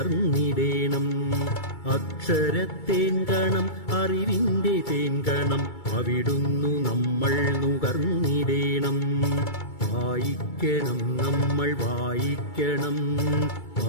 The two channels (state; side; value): late; right; 2.3 ms